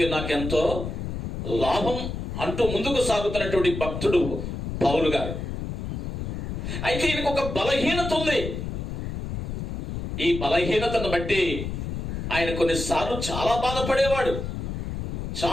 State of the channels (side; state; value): left; noise; rumble, 4 dB below the sound